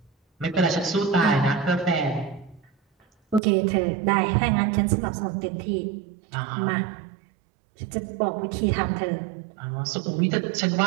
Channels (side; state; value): left; drops out; at 3.4 s